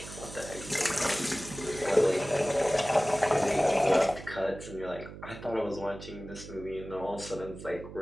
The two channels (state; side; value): noise; right; hum, 13 dB below the sound